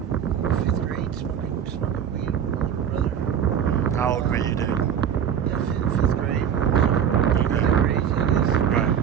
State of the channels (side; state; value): left; quieter; 8.6 dB